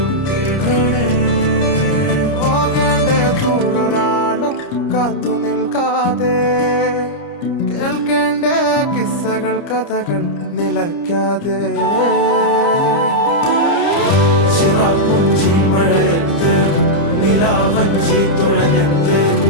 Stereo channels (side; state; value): right; late; 30 ms